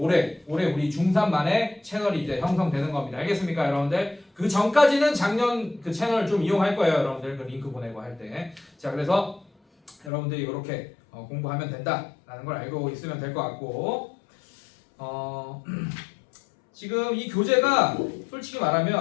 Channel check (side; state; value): right; drops out; at 10.1 s